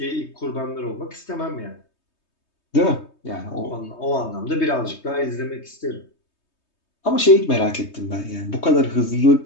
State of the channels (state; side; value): late; right; 3.2 ms